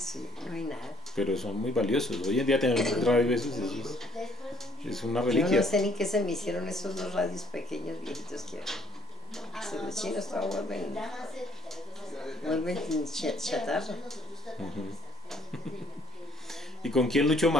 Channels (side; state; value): both; normal; correlation 0.60